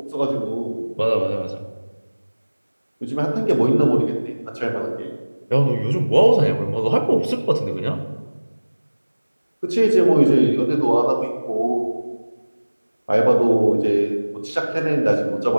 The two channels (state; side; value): inverted; both; correlation -1.00